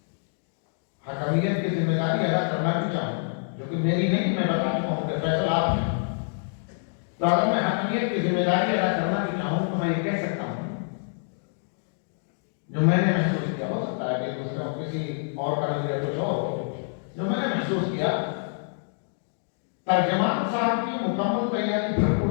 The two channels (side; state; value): right; silent; digital silence